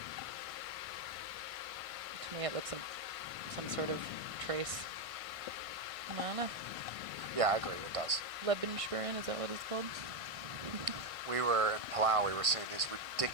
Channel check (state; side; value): late; left; 1.5 ms